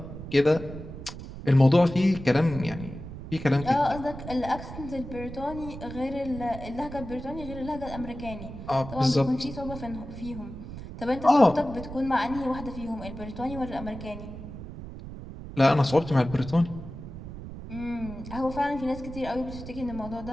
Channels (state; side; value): noise; right; rumble, 11 dB below the sound